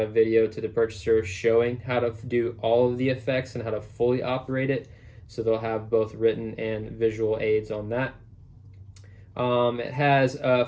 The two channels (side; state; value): both; identical; correlation 1.00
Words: a video to the purchaser showing how to do all of the effects and how to fully operate it. So they'll have both written and visual aids on that. It has